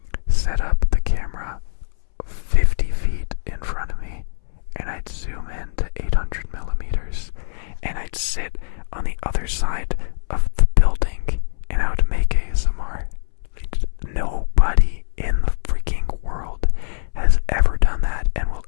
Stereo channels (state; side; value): silent; right; 65 dB below the other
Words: set up the camera 50 feet in front of me, and I'd zoom in to 800 millimeters, and I'd sit on the other side of the building, and I would make ASMR. Nobody in the freaking world has ever done that and will